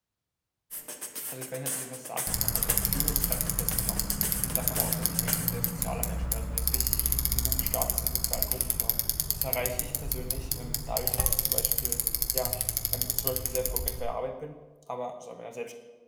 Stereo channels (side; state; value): both; identical; correlation 1.00